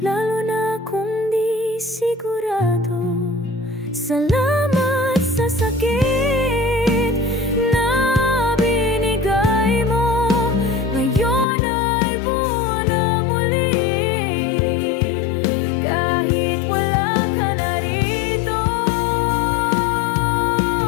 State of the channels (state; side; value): drops out; right; at 11.5 s